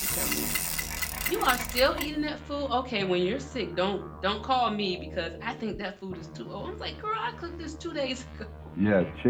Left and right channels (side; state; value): both; identical; correlation 1.00